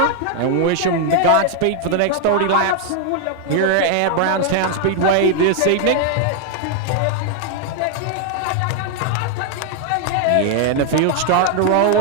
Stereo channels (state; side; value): different; both; correlation 0.00